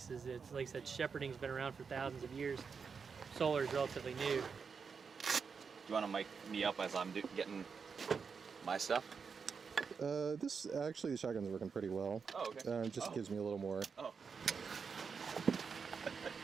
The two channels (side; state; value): left; quieter; 5.7 dB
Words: It's like I said, shepherding's been around for thousands of years. Solar is relatively new. You want to mic me up as I'm getting my stuff? Actually, the shotgun's working pretty well. Oh, okay. It just gives me a little more. Oh.